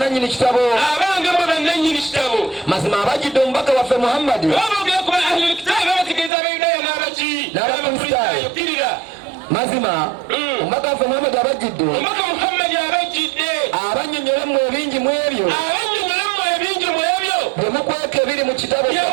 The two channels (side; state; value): left; drops out; at 6.3 s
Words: kitabo. Abange mwe bananyini kitabo. Mazima abajjidde omubaka waffe Muhammadi. Baboogera ku ahlul kitaabi abategeeza Abayudaaya n'abaki? N'Abakristaayo. Mazima omubaka waffe Muhammadi abajjidde. Omubaka Muhammadi abajjidde. Abannyonnyola mu ebingi mu ebyo. Byemukweka ebiri mu kitabo